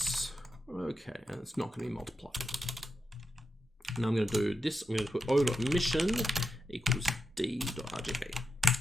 Okay, and it's not going to be multiplied. Now I'm going to do this. I'm going to put O.emission equals D.RGB.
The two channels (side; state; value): both; normal; correlation 0.87